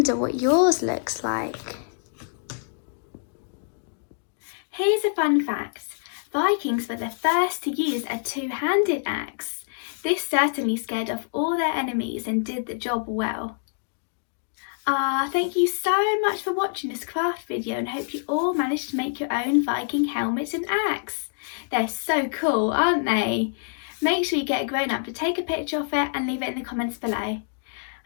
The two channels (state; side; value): silent; right; digital silence